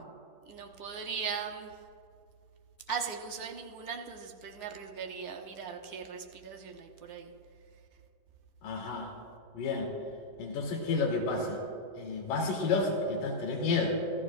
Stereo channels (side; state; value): right; late; 9.7 ms